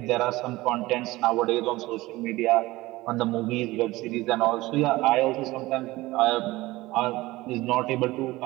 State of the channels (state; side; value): quieter; left; 19.1 dB